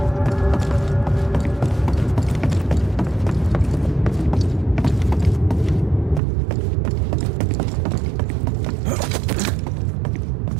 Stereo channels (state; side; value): drops out; left; at 6.2 s